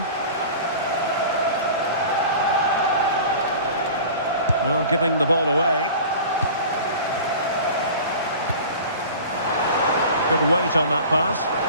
Well, giving the ball away. Good weight on that pass.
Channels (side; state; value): both; inverted; correlation -0.39